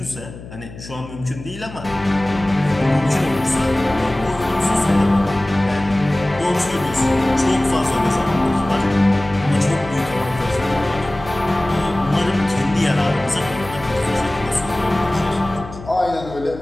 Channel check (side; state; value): left; noise; hum, 15 dB below the sound